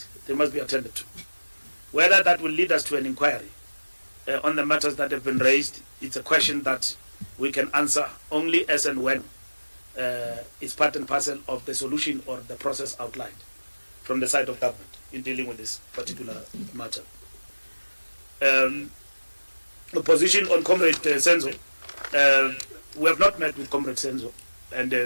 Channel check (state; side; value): inverted; both; correlation -1.00